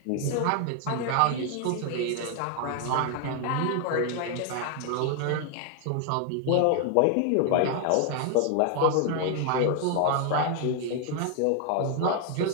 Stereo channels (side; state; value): both; different; correlation 0.00